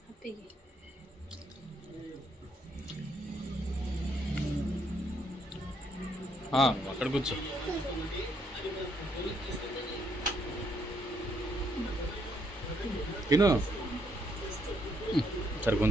అక్కడ కూర్చో. తిను సరే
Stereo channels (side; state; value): both; normal; correlation 0.72